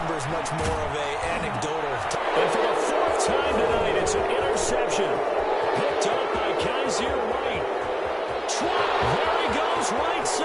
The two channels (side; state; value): both; identical; correlation 1.00